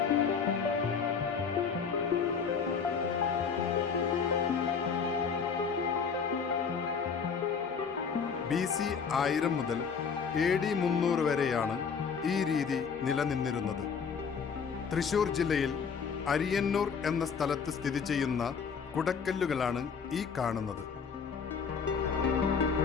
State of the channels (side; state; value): right; quieter; 6.1 dB